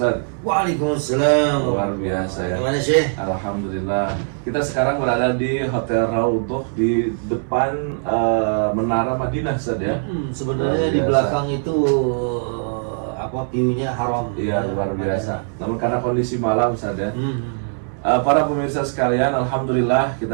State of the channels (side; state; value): left; silent; 65 dB below the other